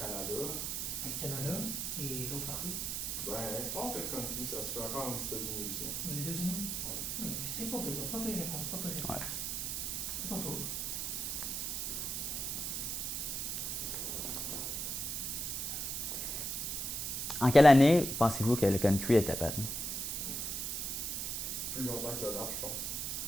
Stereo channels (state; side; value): noise; right; hiss, 2 dB below the sound